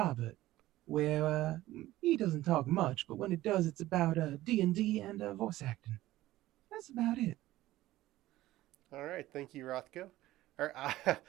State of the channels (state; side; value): quieter; left; 16.0 dB